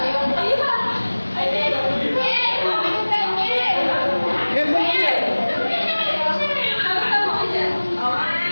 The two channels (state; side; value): inverted; both; correlation -1.00